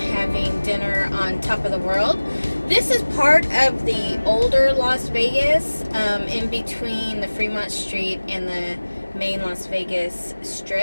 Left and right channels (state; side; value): inverted; both; correlation -1.00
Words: dinner on top of the world. This is part of the older Las Vegas, in between the Fremont Street and the main Las Vegas